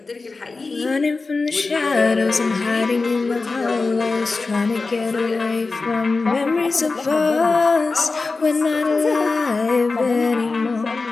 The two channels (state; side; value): quieter; right; 3.9 dB